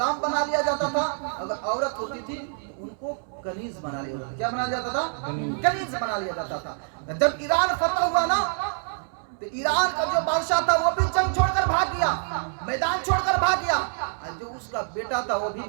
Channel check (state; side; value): silent; left; 61 dB below the other